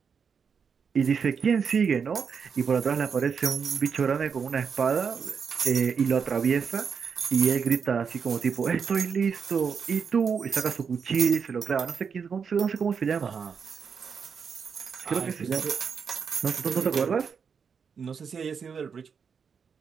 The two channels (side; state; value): left; quieter; 6.3 dB